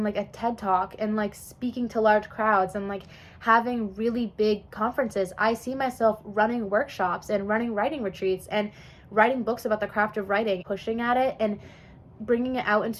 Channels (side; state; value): both; identical; correlation 1.00